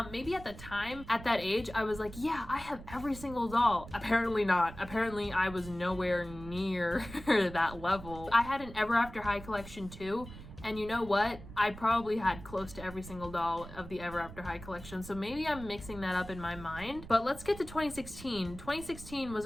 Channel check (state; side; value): noise; right; rumble, 14 dB below the sound